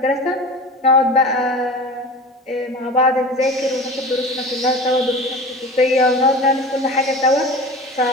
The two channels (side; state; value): both; normal; correlation 0.34